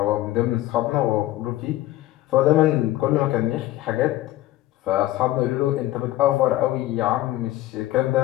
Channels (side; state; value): right; quieter; 15.6 dB